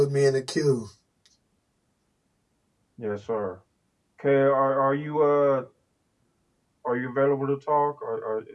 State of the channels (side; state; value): both; identical; correlation 1.00